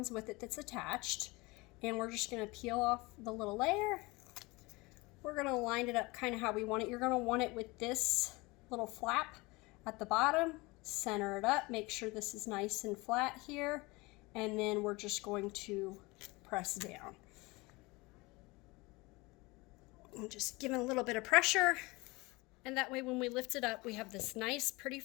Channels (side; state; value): right; quieter; 23.7 dB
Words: with it that's attached, and we're just going to peel off the little layer. We're going to line it up kind of how we want it. You're going to want it with this little flap at the bottom. Center it up, make sure this is nice and flat here, and then we're just going to press down. And just give it a little bit of pressure, and that way when we lift it up, we have this nice pretty